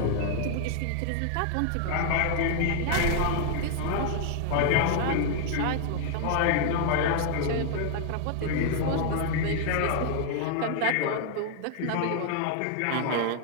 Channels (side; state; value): both; different; correlation 0.00